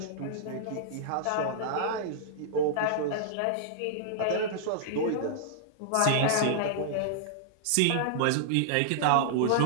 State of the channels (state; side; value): different; both; correlation -0.02